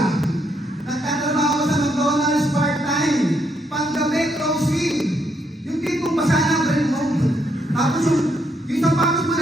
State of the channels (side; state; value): both; normal; correlation 0.75